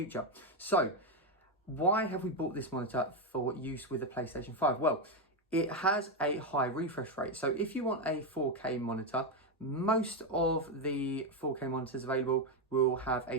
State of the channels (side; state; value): both; normal; correlation 0.06